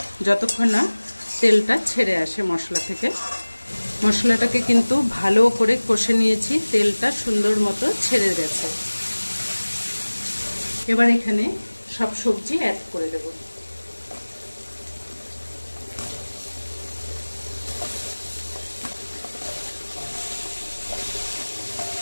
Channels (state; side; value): inverted; both; correlation -1.00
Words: যতক্ষণ না তেলটা ছেড়ে আসে মশলা থেকে। মশলাটাকে কিন্তু ভালো করে কষে নিয়েছি, তেলটা সুন্দর মতো ছেড়ে গেছে। এবার এখানে সব সবজি অ্যাড করে দেব।